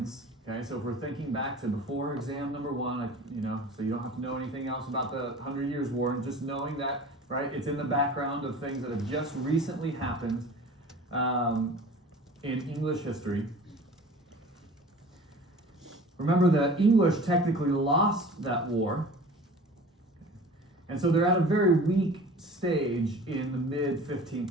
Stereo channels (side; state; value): both; normal; correlation 0.41